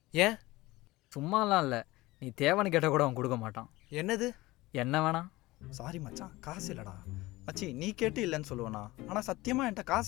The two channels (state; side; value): quieter; right; 19.6 dB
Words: ஏன்? சும்மாலாம் இல்லை, நீ தேவைன்னு கேட்டால் கூட அவன் கொடுக்க மாட்டான். என்னது? என்ன வேணா? சாரி மச்சான், காசு இல்லைடா. மச்சி நீ கேட்டு இல்லைன்னு சொல்லுவேண்ணா, ஆனால் சத்தியமாக என்கிட்ட